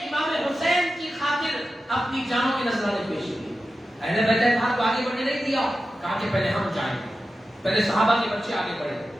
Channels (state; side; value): normal; both; correlation 0.92